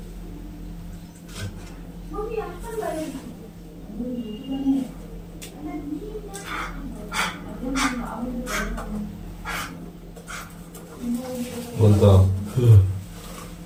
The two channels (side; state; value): both; identical; correlation 1.00